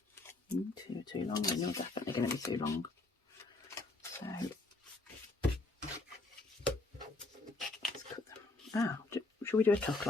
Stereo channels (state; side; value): quieter; right; 3.2 dB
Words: Too long, and you're definitely going to be too long. So let's cut them. Ah, should we do a tuck